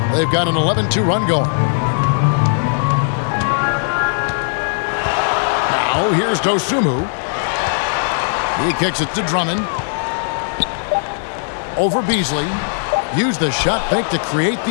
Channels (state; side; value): silent; right; digital silence